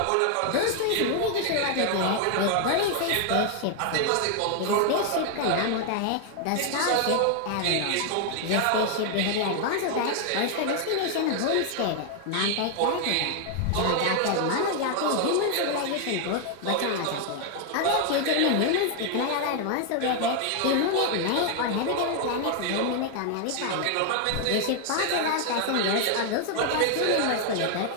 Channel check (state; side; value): different; both; correlation 0.00